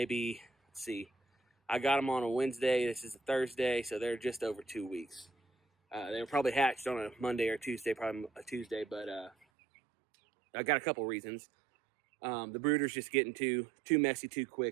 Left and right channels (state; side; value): drops out; left; at 9.3 s